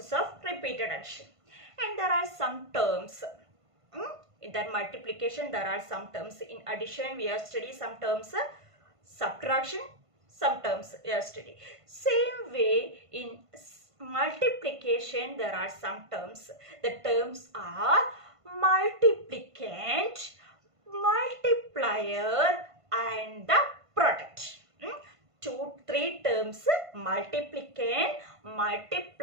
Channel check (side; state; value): left; late; 1.5 ms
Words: of repeated addition. And there are some terms. In that multiplication, there are some terms. In addition, we have studied some terms. Subtraction, some terms we have studied. Same way in multiplication there are some terms. The terms are multiplicand, multiplier and the product. Three terms: multiplicand,